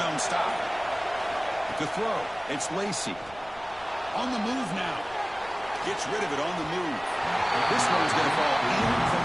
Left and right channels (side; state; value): left; noise; rumble, 22 dB below the sound